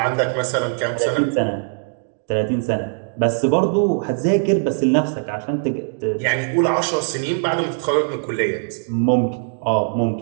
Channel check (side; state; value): left; silent; digital silence